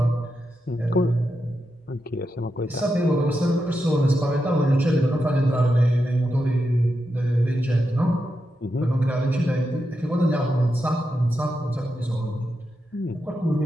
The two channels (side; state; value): both; normal; correlation 0.87